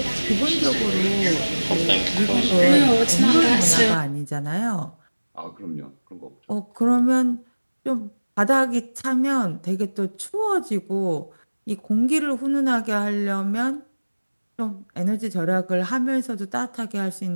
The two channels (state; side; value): inverted; both; correlation -1.00